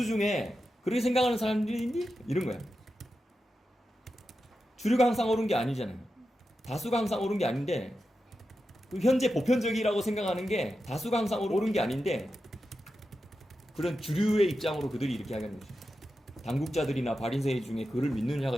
중에 그렇게 생각하는 사람들이 있니? 이런 거야. 주류가 항상 옳은 게 아니잖아요. 다수가 항상 옳은 게 아닌데 현재 보편적이라고 생각하는 게 다수가 항상 옳은 게 아닌데 그런 주류의 입장으로 그들이 이렇게 하는 거죠. 당국자들이나 바리새인 중에 그를 믿는 자가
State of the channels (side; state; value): both; normal; correlation 0.90